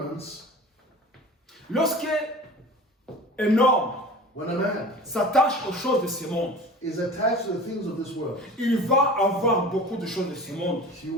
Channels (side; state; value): both; normal; correlation 0.39